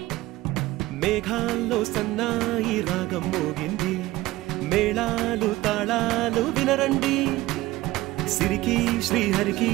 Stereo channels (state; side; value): quieter; left; 17.9 dB